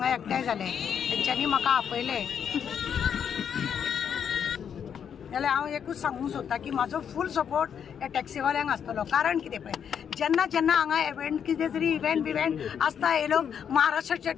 एकठांय जाले तेंच्यांनी म्हाका आपयले जाल्यार हांव एकूच सांगूंक सोदतां की म्हाजो फूल सपोर्ट ह्या टॅक्सीवाल्यांक आसतलो. कारण कितें पळय जेन्ना जेन्ना हांगा इव्हेंट कितें तरी इव्हेंट आसता हे लोक महाराष्ट्राचे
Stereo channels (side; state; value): right; quieter; 8.0 dB